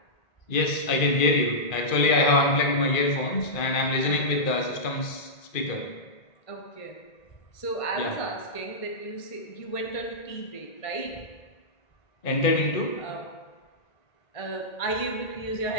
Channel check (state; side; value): late; right; 1.8 ms